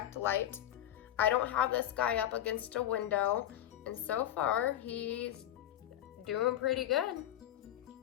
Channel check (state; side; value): quieter; right; 11.9 dB